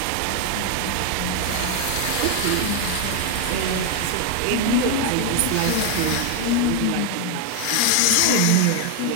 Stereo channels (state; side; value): different; both; correlation 0.01